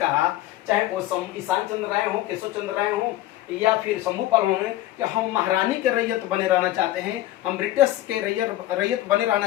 चाहे वो ईशान चंद्र राय हो, केशव चंद्र राय हो या फिर शंभूपाल हो, कि हम महारानी के रैयत बने रहना चाहते हैं, हम ब्रिटिश के रैयत बने रहना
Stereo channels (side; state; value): right; quieter; 15.0 dB